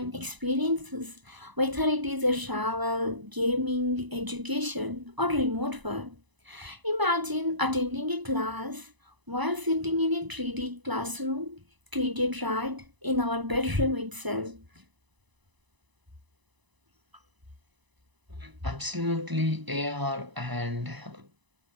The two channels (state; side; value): late; left; 1.0 ms